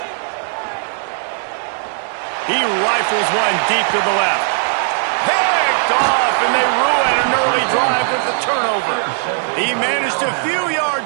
He rifles one deep to the left. Picked off, and they ruin an early drive with the turnover. He managed a few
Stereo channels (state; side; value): silent; left; digital silence